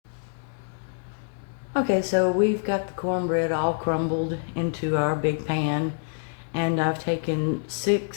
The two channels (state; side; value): silent; right; digital silence